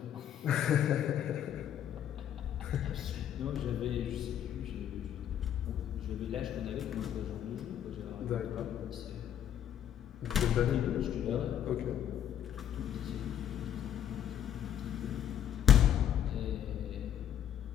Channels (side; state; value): right; quieter; 10.1 dB